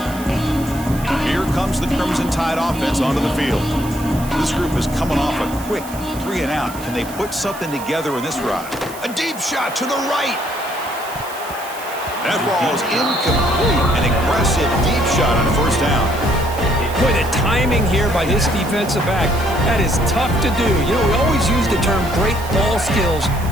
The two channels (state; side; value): noise; right; hiss, 15 dB below the sound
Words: Comes the Crimson Tide offense onto the field. This group is coming off a quick 3-and-out. Can they put something together in this ride? A deep shot to the right. That ball is incomplete. An aggressive deep shot on first down. Boy, the timing here by this defensive back, that is tough to do. You know, we always use the term great ball skills